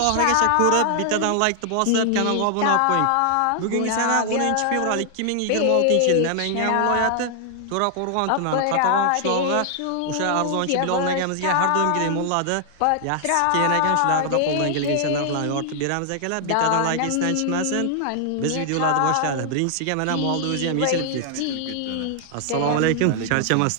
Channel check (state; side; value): different; both; correlation 0.00